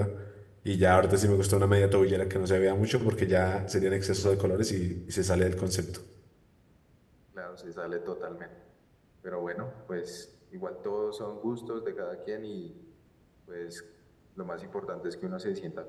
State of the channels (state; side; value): identical; both; correlation 1.00